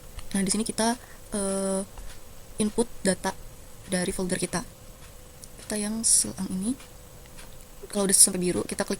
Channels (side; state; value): both; identical; correlation 1.00